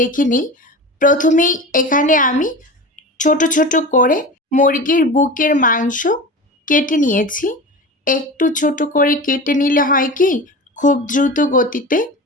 নিই। প্রথমেই এখানে আমি ছোট ছোট করে মুরগির বুকের মাংস কেটে নিয়েছি। একটু ছোট করে কেটে নিলে হয় কি, খুব দ্রুত গতিতে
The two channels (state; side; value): normal; both; correlation 0.30